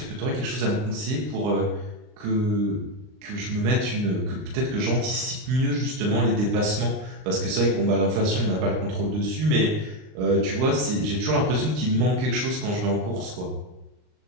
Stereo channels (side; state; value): left; late; 39 ms